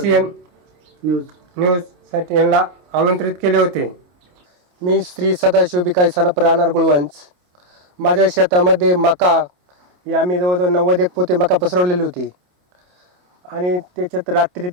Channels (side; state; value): left; late; 28 ms